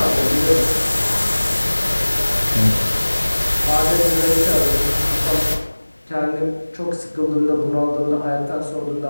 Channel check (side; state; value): both; inverted; correlation -1.00